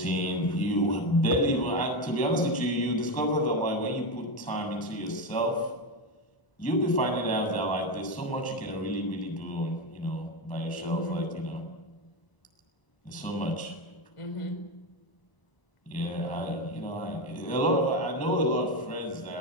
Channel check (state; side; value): late; right; 1.0 ms